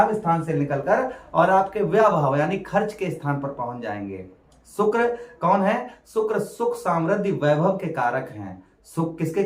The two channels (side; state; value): both; identical; correlation 1.00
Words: स्थान से निकलकर और आपके व्यय भाव यानी खर्च के स्थान पर पहुंच जाएंगे। शुक्र कौन है? शुक्र सुख समृद्धि वैभव के कारक हैं। सुख किसके